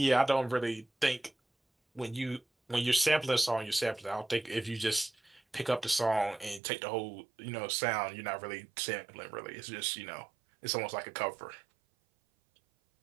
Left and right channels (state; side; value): drops out; left; at 6.6 s